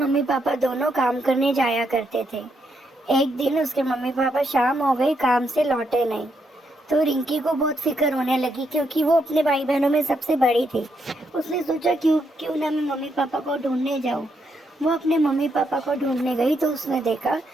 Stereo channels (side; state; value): both; normal; correlation 0.78